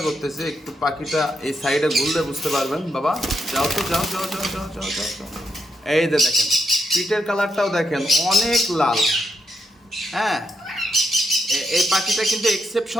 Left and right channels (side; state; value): both; normal; correlation 0.81